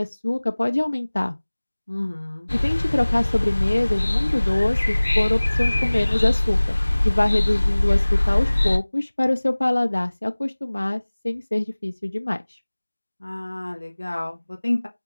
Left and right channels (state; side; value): inverted; both; correlation -1.00